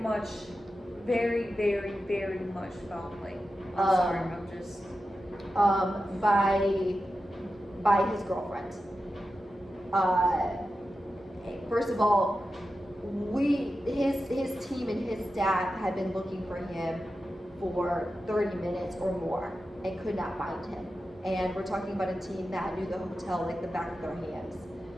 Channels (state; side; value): normal; both; correlation 0.91